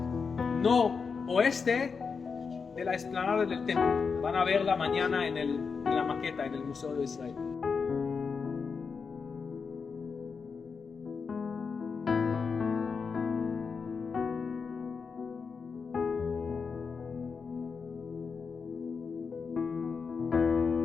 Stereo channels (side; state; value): right; quieter; 5.4 dB